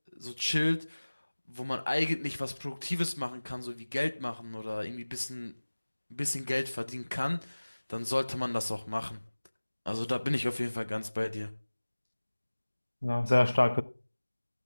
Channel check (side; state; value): both; inverted; correlation -1.00